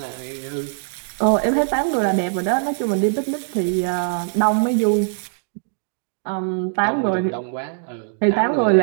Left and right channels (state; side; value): silent; left; digital silence